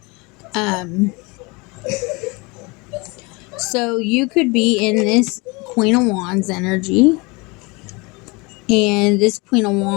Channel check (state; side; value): quieter; right; 26.8 dB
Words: So you could be in this Queen of Wands energy, and this Queen of